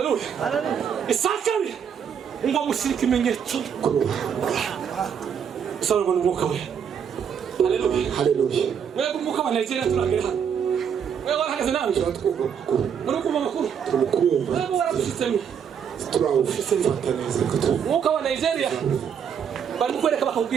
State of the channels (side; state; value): left; quieter; 7.7 dB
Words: Isakari. Ngo mushyike imenyetso. Salwa n'umwuka we. Hallelujah. Wewe kumbuka wa Nigeria turagera hano. Wewe warahagaze nawe twatwumva makuru. Muri kumva makuru? Tumukumva. Wewe warabishitsemo. Turawufata neza kutu. Mwuka wa Nigeria. Bari mukwereka